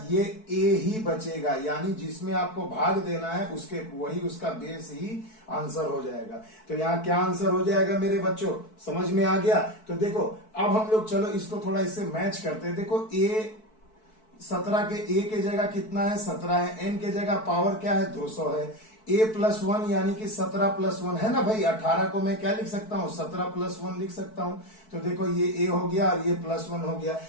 ये a ही बचेगा, यानी जिसमें आपको भाग देना है उसके वही उसका बेस ही आंसर हो जाएगा। तो यहाँ क्या आंसर हो जाएगा मेरे बच्चों, समझ में आ गया। तो देखो अब हम लोग चलो इसको थोड़ा इससे मैच करते हैं। देखो a 17 के a के जगह कितना है, 17 है, n के जगह पावर क्या है, 200 है, a+1 यानी कि 17+1 है ना भाई। 18 को मैं क्या लिख सकता हूँ, 17+1 लिख सकता हूँ। तो देखो ये a हो गया और ये +1 हो गया।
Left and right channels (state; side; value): late; right; 4.6 ms